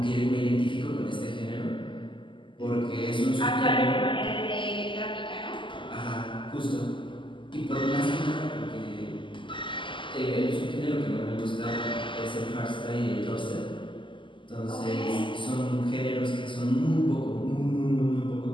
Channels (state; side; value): late; right; 0.24 ms